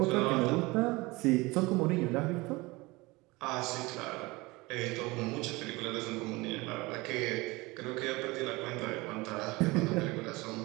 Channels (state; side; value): quieter; left; 22.8 dB